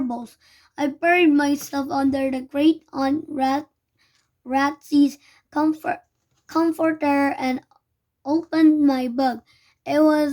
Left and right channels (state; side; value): identical; both; correlation 1.00